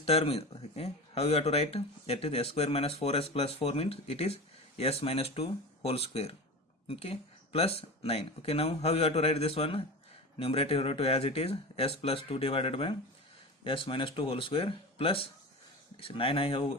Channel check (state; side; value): normal; both; correlation 0.29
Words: is, okay, how you have to write, that is s square minus 4s plus 4 means it is s minus 2 whole square, okay, plus 9. Okay, now how you have to write this one? Numerator you have to as it is s plus 2 divided by s minus 2 whole square plus 9.